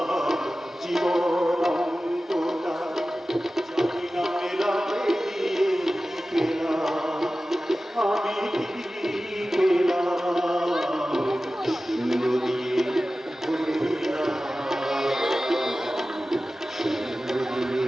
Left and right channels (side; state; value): both; normal; correlation 0.95